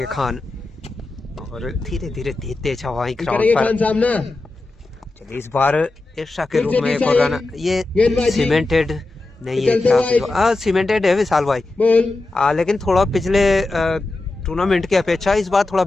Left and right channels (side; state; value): right; quieter; 3.1 dB